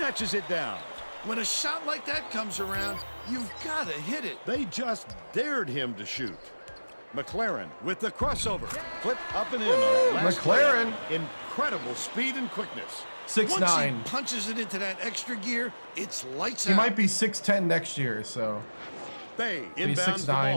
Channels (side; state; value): both; inverted; correlation -1.00